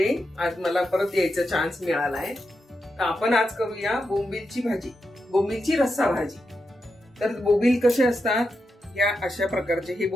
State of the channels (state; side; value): normal; both; correlation 0.87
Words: आज मला परत यायचा चान्स मिळाला आहे। तर आपण आज करूया बोंबीलची भाजी, बोंबीलची रस्सा भाजी। तर बोंबील कसे असतात, या अशा प्रकारचे हे